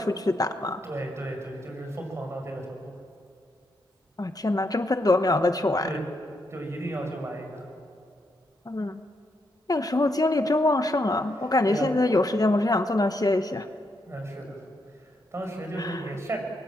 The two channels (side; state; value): both; normal; correlation 0.79